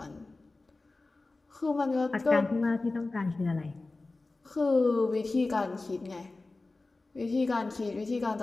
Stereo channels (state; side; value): quieter; right; 3.3 dB